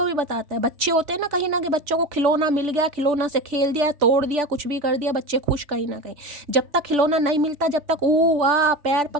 भी बताता है। बच्चे होते हैं ना, कहीं ना कहीं बच्चों को खिलौना मिल गया, खिलौना से खेल दिया, तोड़ दिया, कुछ भी कर दिया, बच्चे खुश कहीं ना कहीं। जब तक खिलौना नहीं मिलता, जब तक ऊ वाह पैर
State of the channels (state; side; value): late; left; 3.4 ms